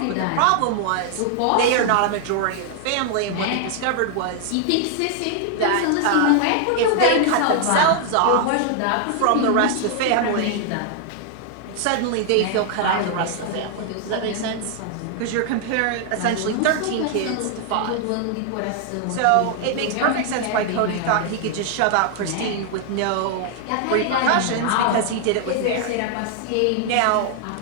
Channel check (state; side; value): different; both; correlation 0.00